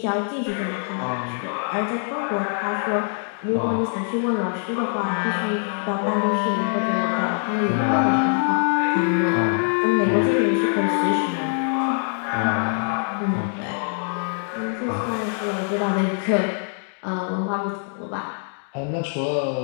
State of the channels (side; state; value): right; silent; 55 dB below the other